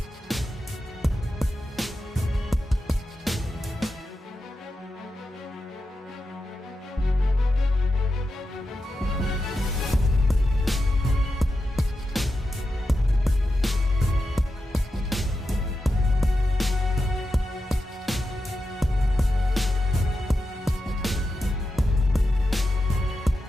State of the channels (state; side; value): normal; both; correlation 0.89